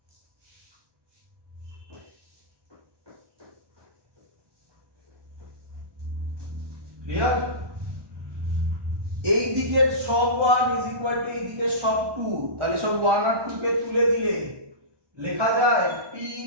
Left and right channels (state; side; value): late; left; 1.1 ms